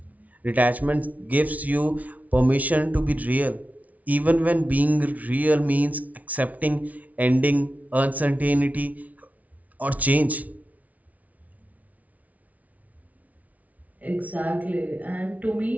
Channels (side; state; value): left; late; 0.071 ms